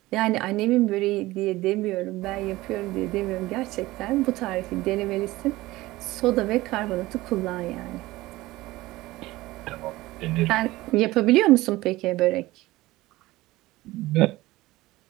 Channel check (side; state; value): left; quieter; 18.6 dB